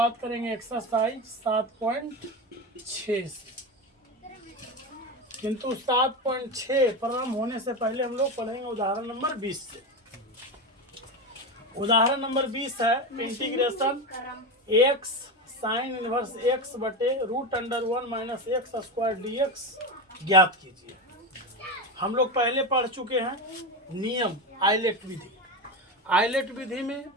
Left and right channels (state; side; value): normal; both; correlation 0.19